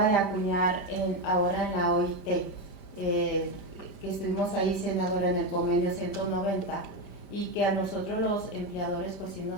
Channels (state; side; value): late; right; 5.0 ms